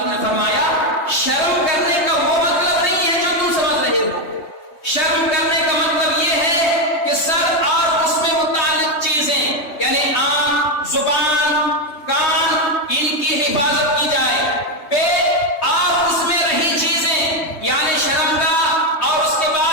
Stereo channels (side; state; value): right; late; 3.2 ms